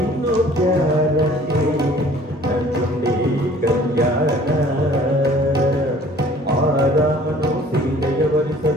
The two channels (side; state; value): both; normal; correlation 0.52